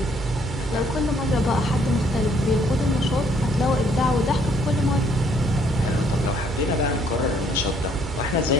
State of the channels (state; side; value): normal; both; correlation 0.66